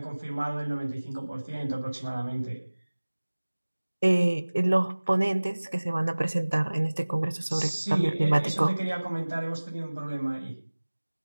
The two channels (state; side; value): inverted; both; correlation -1.00